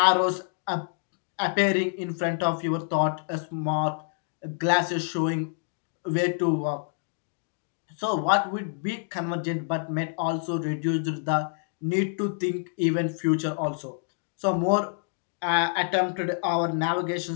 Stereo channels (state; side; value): silent; right; digital silence